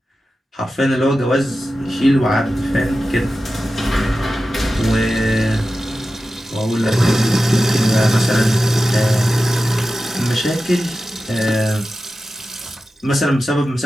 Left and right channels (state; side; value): normal; both; correlation 0.93